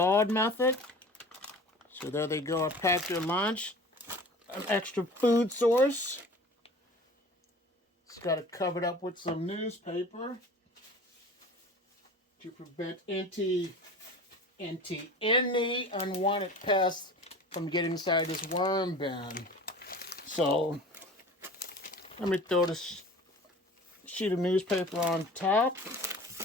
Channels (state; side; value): normal; both; correlation 0.40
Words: method. So there they go. I packed your lunch. An extra food source. It's got it covered up with some newspaper to prevent any unwanted pests from getting inside this worm bin. So let me throw this sheet of newspaper on top.